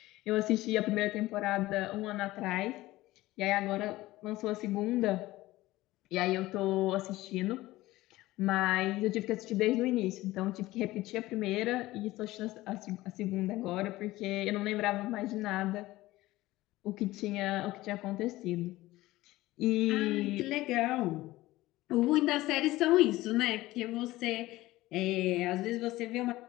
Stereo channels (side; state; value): right; quieter; 17.7 dB